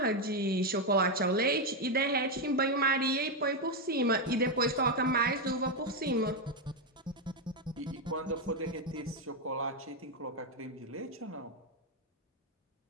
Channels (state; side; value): normal; both; correlation 0.05